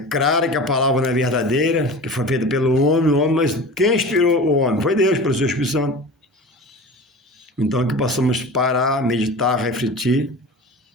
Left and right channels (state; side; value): normal; both; correlation 0.34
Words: que a palavra não é verdadeira, que foi feita pelo homem, mas quem inspirou o homem? Foi Deus, pelo seu Espírito Santo. Então que possamos parar, meditar, refletir